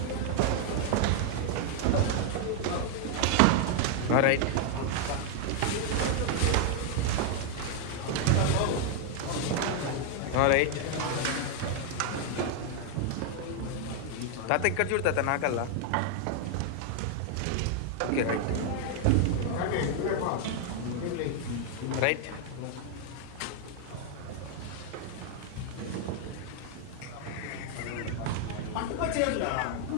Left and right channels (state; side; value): different; both; correlation 0.00